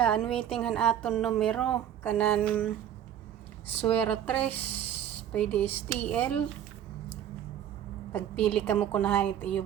waiting han aton numero kanan suwera 3 pwede STL. Pagpili ka mo kunahan ito iyo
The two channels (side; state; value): left; quieter; 10.3 dB